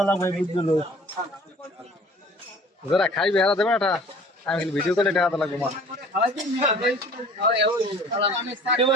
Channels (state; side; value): normal; both; correlation 0.48